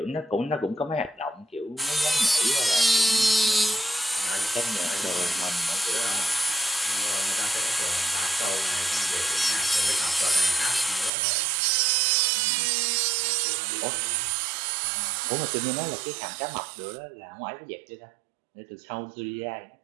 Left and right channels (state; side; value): drops out; left; at 11.1 s